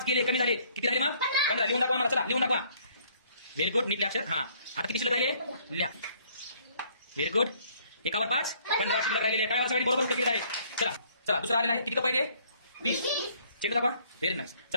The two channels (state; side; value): inverted; both; correlation -0.62